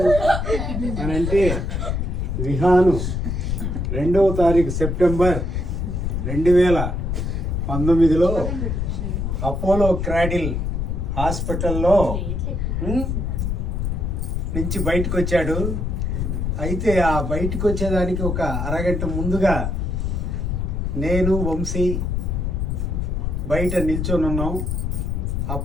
అని అంటే, విహాను 2వ తారీఖు సెప్టెంబర్ 2019లో అపోలో క్రాడిల్ హాస్పిటల్లో నుంచి బయటకు వచ్చాడు. అయితే ఆ బయటకు వచ్చేదానికి ఒక అరగంట ముందుగా నేను వంశీ బయట నిల్చొని ఉన్నాం.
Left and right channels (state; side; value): noise; left; rumble, 1 dB below the sound